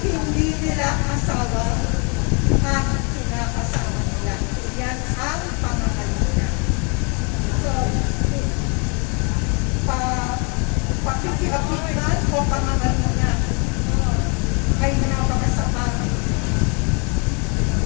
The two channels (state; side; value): quieter; right; 34.3 dB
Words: hindi nila asawa ang kinakasama nila. Yan ang pangangalun niya. So, pakikiapit man o pangangalun niya ay napakasamang